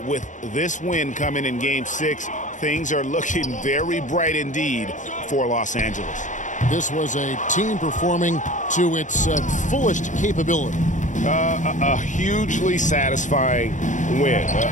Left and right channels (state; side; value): late; right; 0.36 ms